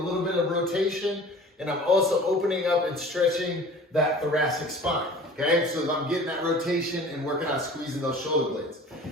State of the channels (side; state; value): both; normal; correlation 0.44